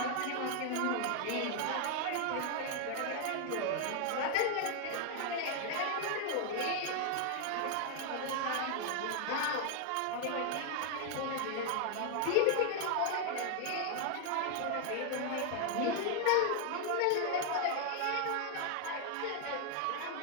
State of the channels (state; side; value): different; both; correlation 0.00